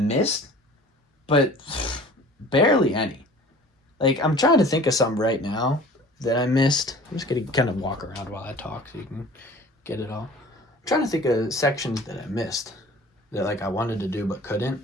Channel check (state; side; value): normal; both; correlation 0.45